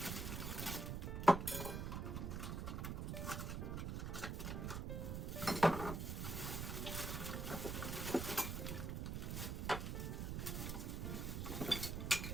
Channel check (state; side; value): noise; right; rumble, 2 dB below the sound